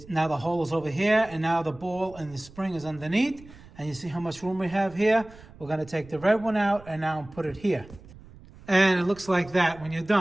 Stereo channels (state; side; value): noise; right; rumble, 21 dB below the sound